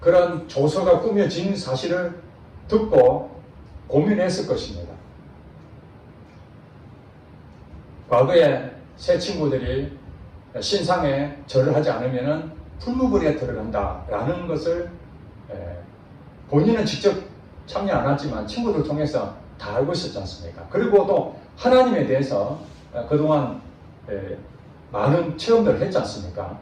조서가 꾸며진 사실을 듣고 고민했을 것입니다. 과거에 새 친구들이 신상에 절을 하지 않으면 풀무불에 들어간다라는 것을 본인은 직접 참여 안 하지만 친구들 통해서 다 알고 있었지 않습니까? 그리고 또 하나님에 대해서 그동안 많은 체험들을 했지 않습니까?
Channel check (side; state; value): both; identical; correlation 1.00